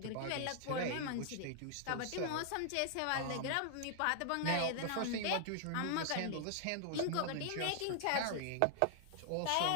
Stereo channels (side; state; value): both; different; correlation 0.00